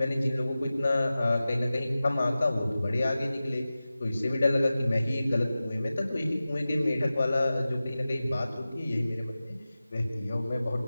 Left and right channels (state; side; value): inverted; both; correlation -0.96